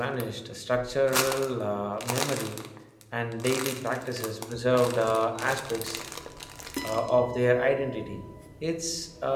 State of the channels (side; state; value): both; identical; correlation 1.00